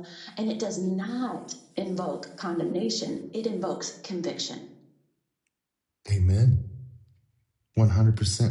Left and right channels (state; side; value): identical; both; correlation 1.00